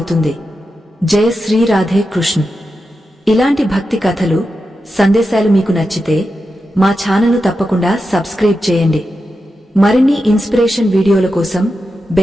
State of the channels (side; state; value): both; normal; correlation 0.89